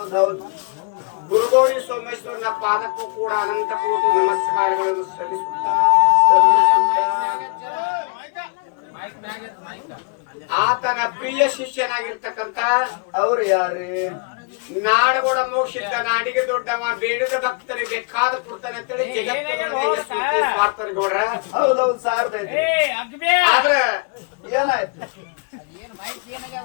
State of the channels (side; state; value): right; quieter; 33.5 dB